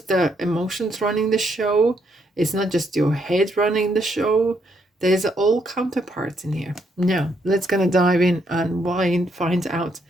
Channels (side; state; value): both; normal; correlation 0.75